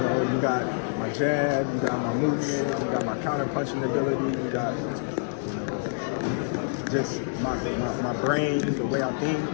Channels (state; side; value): silent; right; digital silence